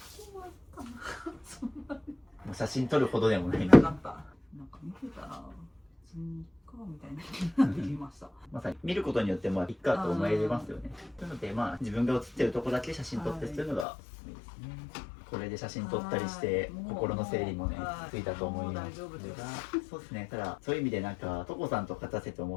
そんな写真撮るほどでもない。なかった。なんか見てたら、別にいっかみたいな気になってきました。まさに見ることによっていっかと思えますよね。なので自分が写ってるとこだけ写真撮ってするのがおすすめですね。これで写真撮ったりして心の整理もねついたと思いますが、そうですね。ただそういう意味でトコさんと勝たせて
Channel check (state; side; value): drops out; right; at 13.9 s